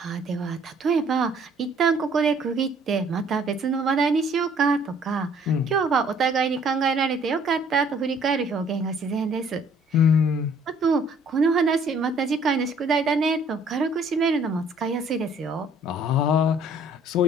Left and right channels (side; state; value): both; normal; correlation 0.59